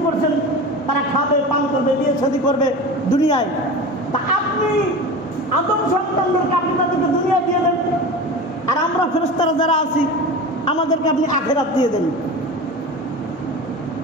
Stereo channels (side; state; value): both; normal; correlation 0.31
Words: করছেন, তারা খাবে, পান করবে, বিয়ে শাদী করবে দুনিয়ায়, তা আপনি আদম সন্তানদেরকে আপনি তাদেরকে দুনিয়া দিয়ে দেন, আর আমরা ফেরেশতারা যারা আছি আমাদেরকে আপনি আখেরাত দিয়ে দেন।